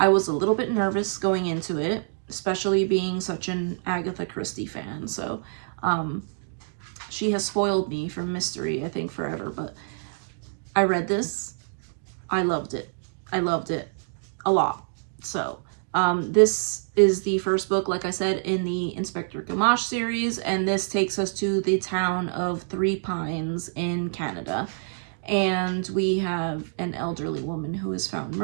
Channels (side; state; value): left; silent; digital silence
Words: was a little bit nervous going into it, especially being such an Agatha Christie fan. So she has spoiled me from mystery, I think, forever, but I read this. I loved it. I loved it a lot. So this is the first book, like I said, in the Inspector Gamache series, and this takes us to the town of Three Pines in Canada. And we have an elderly woman who is found